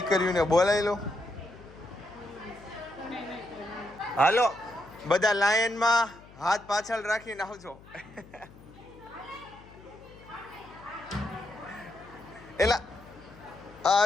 બોલાવી લો હાલો બધા લાઈનમાં હાથ પાછળ રાખીને આવજો એલા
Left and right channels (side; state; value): left; noise; hum, 21 dB below the sound